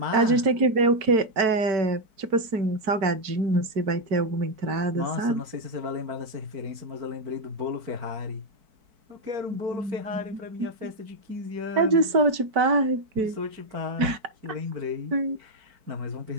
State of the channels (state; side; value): late; left; 4.6 ms